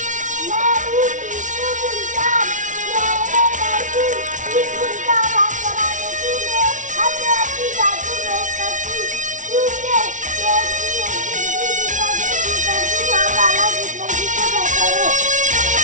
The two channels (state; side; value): late; left; 0.37 ms